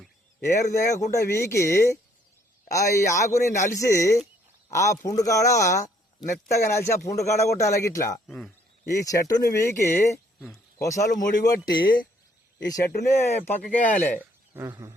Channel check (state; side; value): normal; both; correlation 0.65